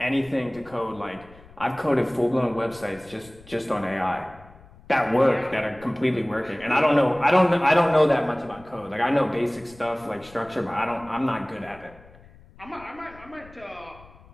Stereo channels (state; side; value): noise; left; rumble, 23 dB below the sound